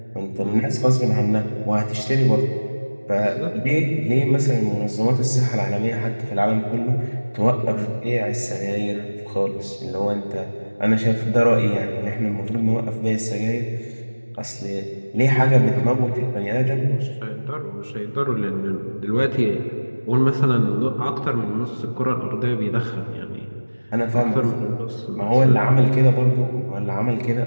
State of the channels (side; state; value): both; inverted; correlation -1.00